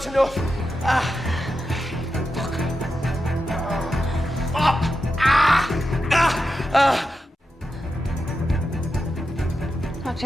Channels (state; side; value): normal; both; correlation 0.89